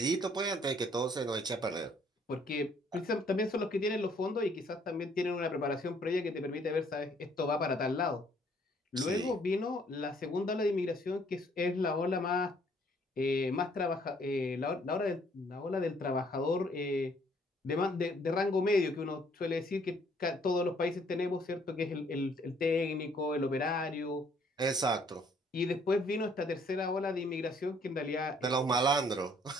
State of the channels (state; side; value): normal; both; correlation 0.63